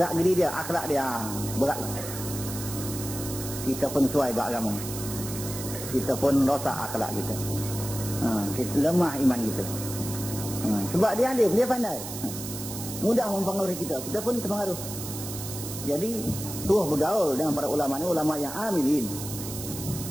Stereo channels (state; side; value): noise; right; hiss, 9 dB below the sound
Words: geri dia, akhlak dia, berat. Kita pun suai beragama. Kita pun rosak akhlak kita. Kita lemah iman kita. Sebab dia alim, dia pandai. Mudah mempengaruhi kita, kita pun terpengaruh. Jadi, suruh bergaul dengan para ulama ni, ulama yang amilin.